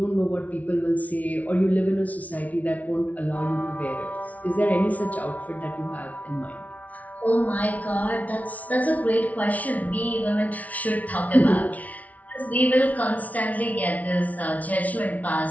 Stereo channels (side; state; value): right; late; 0.071 ms